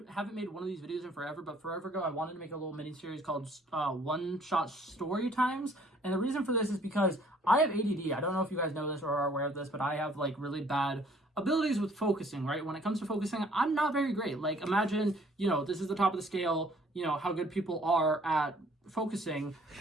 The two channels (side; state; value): both; normal; correlation 0.59